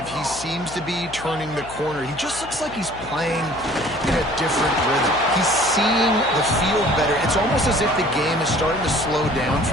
he seems to be turning the corner. He just looks like he's playing in a different rhythm. He's seeing the field better. It's almost as if the game is starting to slow down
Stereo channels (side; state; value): left; noise; hum, 16 dB below the sound